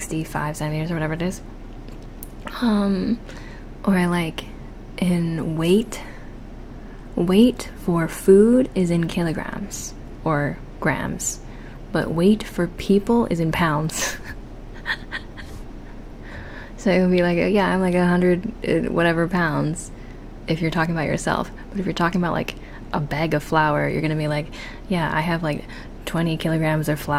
centimeters or whatever it is. Or like in weight for food is in kilograms or grams, but weight for people is in pounds. So it would be like, yeah, I'm like 100 whatever pounds if you're talking about yourself. But if you're talking about like a bag of flour, you're gonna be like, yeah, I have like 20 kilograms of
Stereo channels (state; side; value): identical; both; correlation 1.00